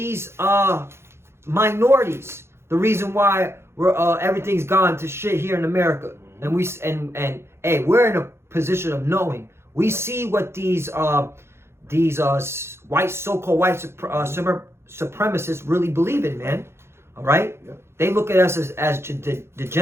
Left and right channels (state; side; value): late; left; 0.12 ms